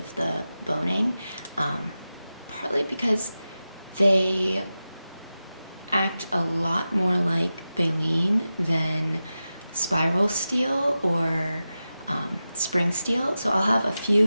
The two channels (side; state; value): both; inverted; correlation -0.93